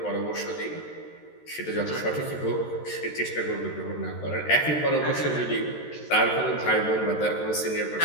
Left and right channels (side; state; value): right; late; 13 ms